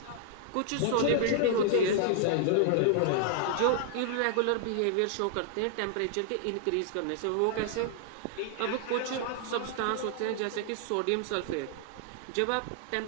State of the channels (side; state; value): both; different; correlation -0.01